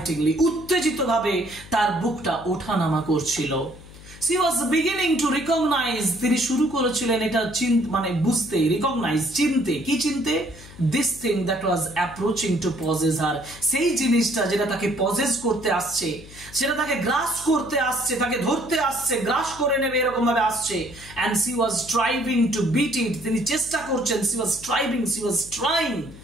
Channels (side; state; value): left; noise; hum, 18 dB below the sound